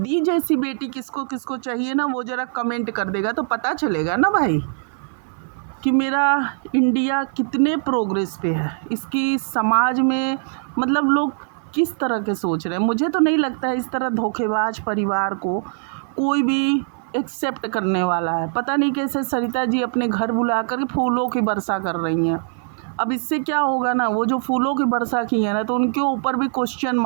जैसी बेटी किसको किसको चाहिए ना, वो ज़रा कमेंट कर देगा तो पता चलेगा ना भाई कि मेरा इंडिया कितने प्रोग्रेस पे है, इसकी समाज में मतलब लोग किस तरह के सोच रहे हैं। मुझे तो नहीं लगता है इस तरह धोखेबाज परिवार को कोई भी एक्सेप्ट करने वाला है। पता नहीं कैसे सरिता जी अपने घर बुला कर फूलों की वर्षा कर रही हैं। अब इससे क्या होगा ना, वो जो फूलों की वर्षा की है ना, तो उनके ऊपर भी क्वेश्चन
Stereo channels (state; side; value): silent; left; 56 dB below the other